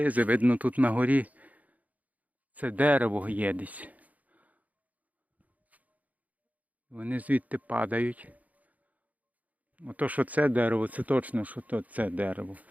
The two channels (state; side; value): late; left; 0.075 ms